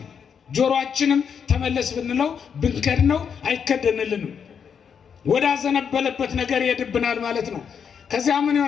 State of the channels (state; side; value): quieter; right; 7.1 dB